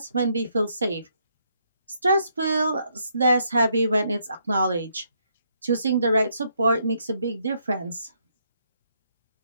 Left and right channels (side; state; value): both; inverted; correlation -0.74